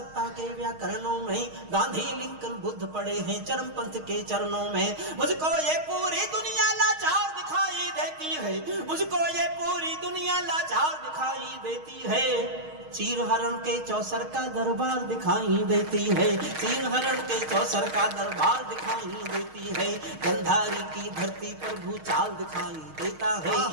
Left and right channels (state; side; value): late; left; 6.4 ms